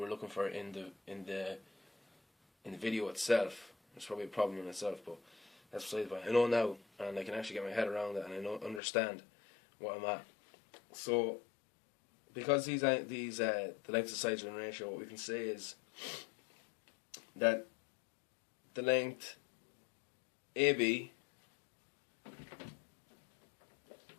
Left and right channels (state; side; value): drops out; right; at 8.8 s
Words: looking for in the video itself. It's probably a problem in itself, but that's beside the point. I know now, and I can actually get my head around it, and I understand what I'm at. So because the lengths of sides are in ratio, what we can say is that the length AB